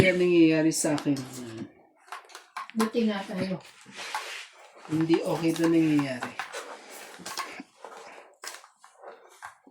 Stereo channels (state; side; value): identical; both; correlation 1.00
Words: ang nangyayari sa akin. Buti nga tayo. Hindi okay to nangyayari.